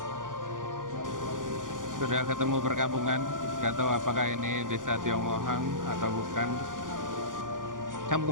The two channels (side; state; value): left; late; 0.89 ms